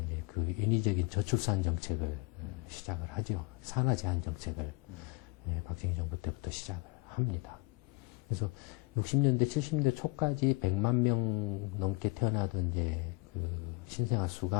그 인위적인 저출산 정책을 시작을 하죠. 산하 제한 정책을 박정희 정부 때부터 시작을 합니다. 그래서 60년대, 70년대 초까지 100만 명 넘게 태어나던 이제 그 신생아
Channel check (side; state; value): right; quieter; 25.5 dB